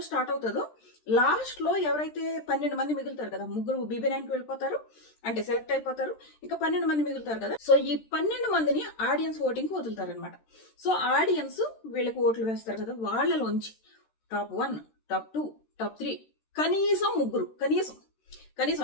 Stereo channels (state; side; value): late; right; 13 ms